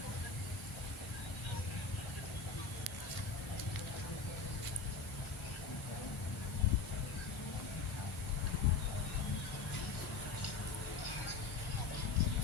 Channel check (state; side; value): quieter; right; 4.5 dB